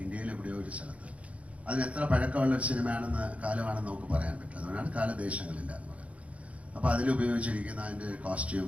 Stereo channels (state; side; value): late; left; 0.065 ms